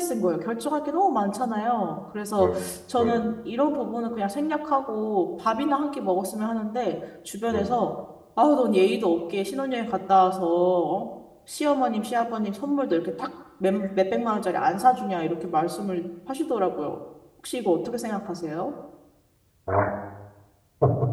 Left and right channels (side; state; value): both; identical; correlation 1.00